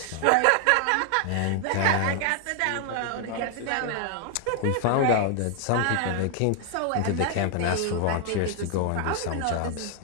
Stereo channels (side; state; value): both; different; correlation 0.00